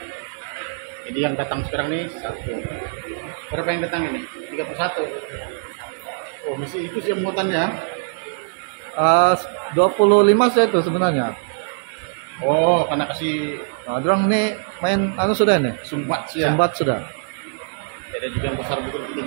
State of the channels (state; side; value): silent; left; digital silence